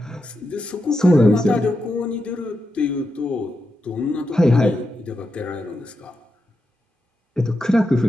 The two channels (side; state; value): both; normal; correlation 0.87